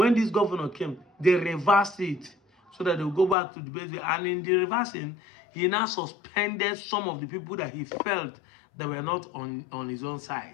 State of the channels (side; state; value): right; drops out; at 3.4 s